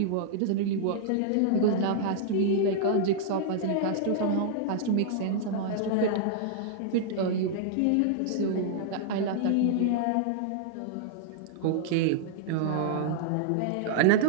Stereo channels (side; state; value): both; different; correlation -0.01